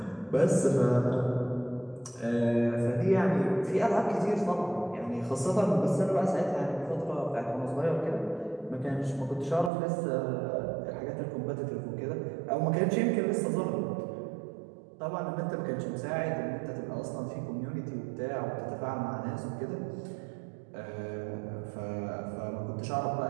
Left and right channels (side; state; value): left; drops out; at 9.7 s